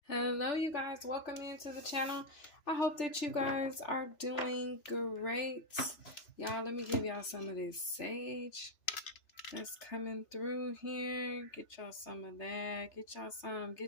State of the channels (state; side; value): late; right; 3.4 ms